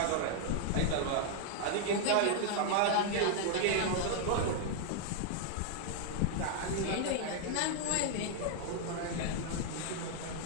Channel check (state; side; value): different; both; correlation -0.01